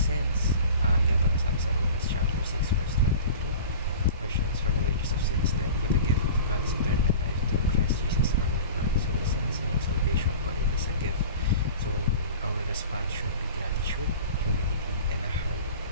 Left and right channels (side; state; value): both; inverted; correlation -0.38